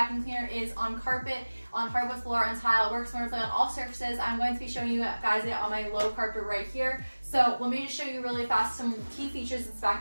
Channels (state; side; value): inverted; both; correlation -1.00